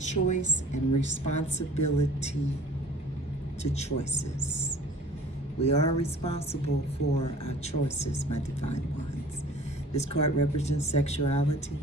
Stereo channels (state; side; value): normal; both; correlation 0.48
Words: and responsibility to choices. We are responsible for our choices, my divine ones. This card represents sexuality,